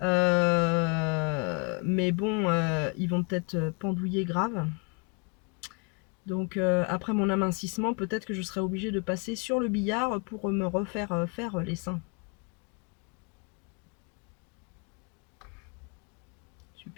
Mais bon, ils vont peut-être pendouiller grave. Donc après mon amincissement, peut-être que je serai obligée de passer sur le billard pour me refaire faire les seins.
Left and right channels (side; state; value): right; quieter; 33.3 dB